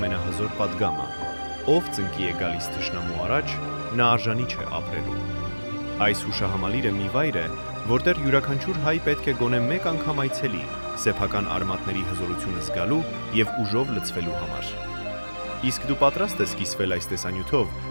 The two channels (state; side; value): inverted; both; correlation -1.00